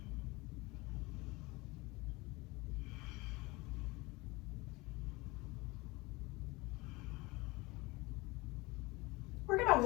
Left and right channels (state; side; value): quieter; right; 23.2 dB